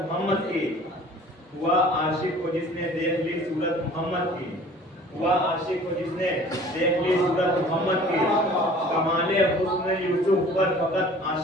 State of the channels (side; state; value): both; normal; correlation 0.48